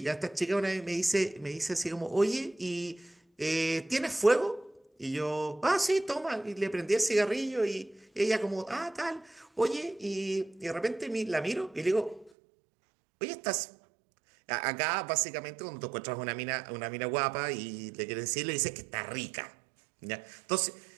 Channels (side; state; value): left; drops out; at 12.3 s